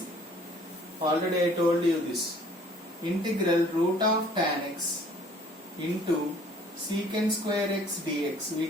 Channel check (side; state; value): both; normal; correlation 0.55